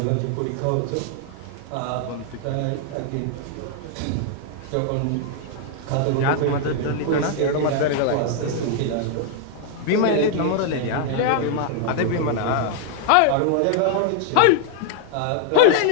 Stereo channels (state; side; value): different; both; correlation 0.00